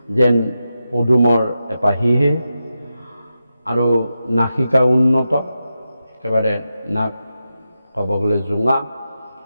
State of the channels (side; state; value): both; inverted; correlation -0.90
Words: যেন পদুমৰ এপাহিহে, আৰু নাসিকা উন্নত, একেবাৰে নাক ক'ব গ'লে জোঙা,